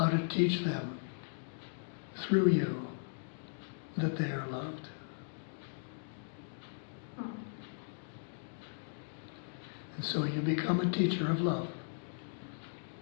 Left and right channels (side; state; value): right; silent; digital silence